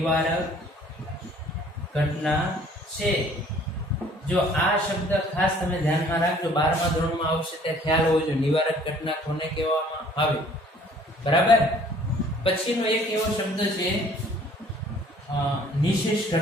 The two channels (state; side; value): normal; both; correlation 0.56